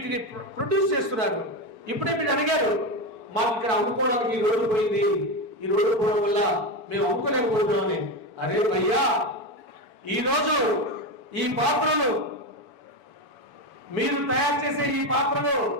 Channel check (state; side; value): late; left; 7.0 ms